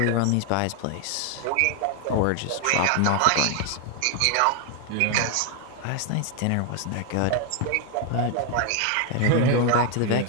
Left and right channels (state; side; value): different; both; correlation 0.00